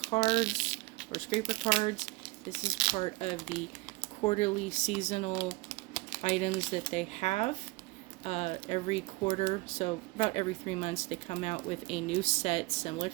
or scraper cards, this is part of the quarterly seasonal items that they have. Every quarter, so about every 3 months, they come out with a new set similar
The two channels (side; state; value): left; quieter; 23.8 dB